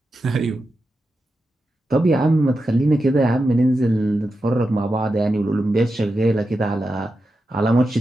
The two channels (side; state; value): both; normal; correlation 0.89